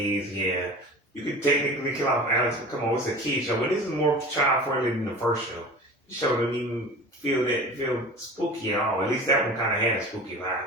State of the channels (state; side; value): normal; both; correlation 0.37